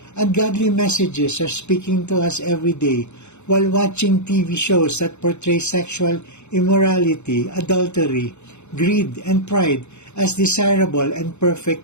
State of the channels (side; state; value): right; late; 0.82 ms